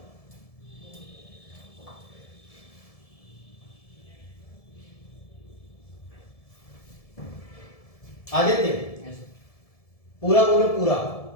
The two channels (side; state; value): right; late; 1.7 ms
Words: Aditya पूरा बोलो, पूरा।